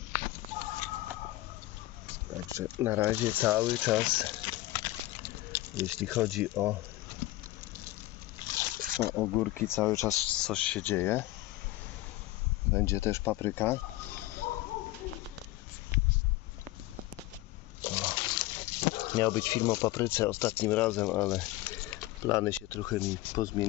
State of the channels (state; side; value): quieter; right; 17.5 dB